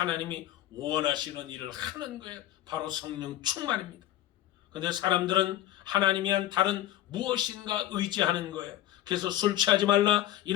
원하시는 일을 하는 거예요. 바로 성령 충만입니다. 그런데 사람들은 하나님이 한 다른 무엇인가 의지하는 거예요. 그래서 술 취하지 말라,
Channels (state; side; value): quieter; right; 13.5 dB